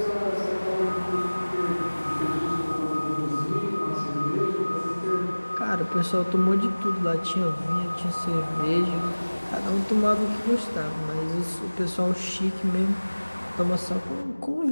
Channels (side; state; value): both; inverted; correlation -1.00